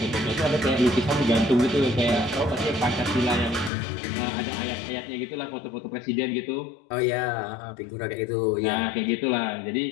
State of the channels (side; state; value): right; drops out; at 3.7 s